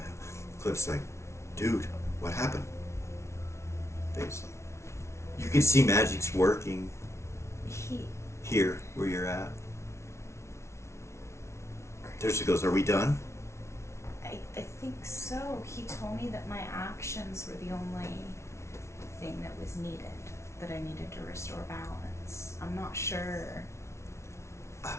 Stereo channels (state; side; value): late; right; 0.13 ms